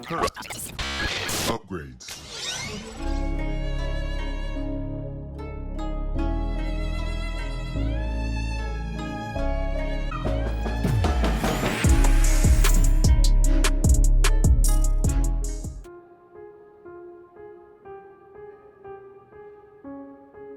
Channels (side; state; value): both; identical; correlation 1.00